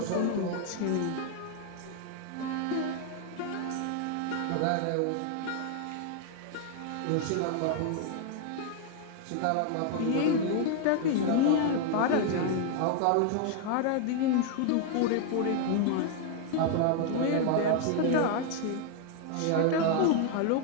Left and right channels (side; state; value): both; different; correlation 0.00